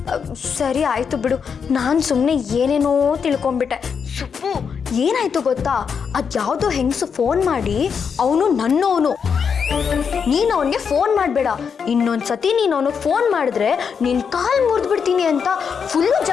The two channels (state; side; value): quieter; right; 6.5 dB